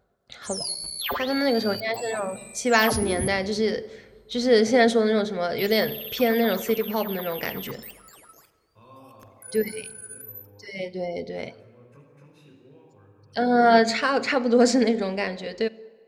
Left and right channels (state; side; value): identical; both; correlation 1.00